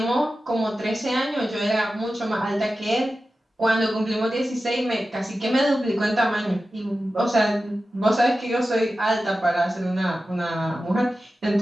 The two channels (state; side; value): normal; both; correlation 0.93